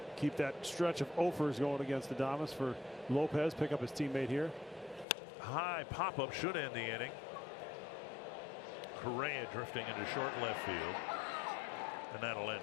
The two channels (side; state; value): right; drops out; at 5.1 s